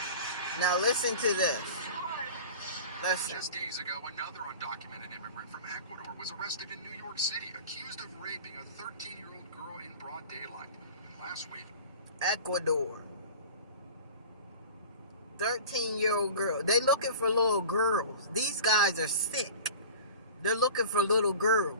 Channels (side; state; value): both; inverted; correlation -0.38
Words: Now listen to this. Listen. just days ago, another undocumented immigrant from Ecuador was arrested in New York City, accused of raping a 13-year-old girl in broad daylight. And last week, Ecuador. 13-year-old girl. They looking for little girls. These guys are sick. They're looking for little